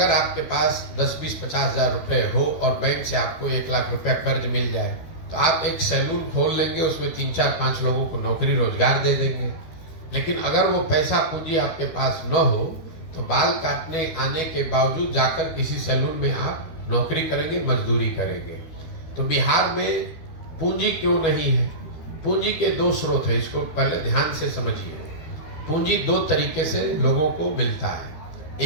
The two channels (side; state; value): right; late; 12 ms